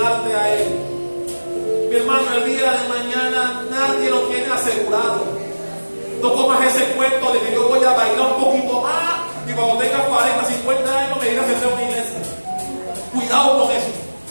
a Él. Mi hermano, el día de mañana nadie lo tiene asegurado. No comas ese cuento de que yo voy a bailar un poquito más y cuando tenga 40, 50 años me iré a hacer una iglesia. Cuidado con eso.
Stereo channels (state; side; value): inverted; both; correlation -1.00